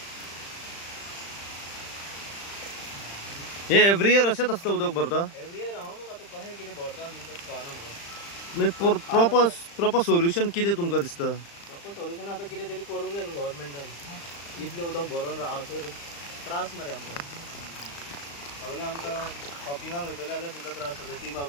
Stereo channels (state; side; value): late; right; 35 ms